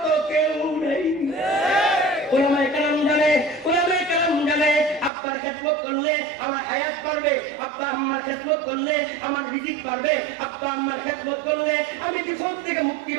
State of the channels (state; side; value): drops out; left; at 5.1 s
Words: কেউ নেই ওলামায়ে কেরাম জানে আব্বার খেদমত করলে আমার হায়াত বাড়বে আব্বা আম্মার খেদমত করলে আমার রিজিক বাড়বে আব্বা আম্মার খেদমত করলে আমি বিপদ থেকে মুক্তি